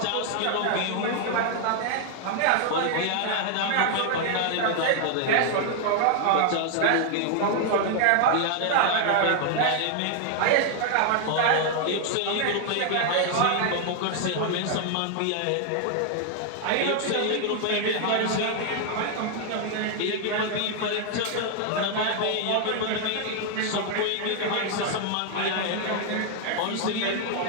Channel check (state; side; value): different; both; correlation 0.00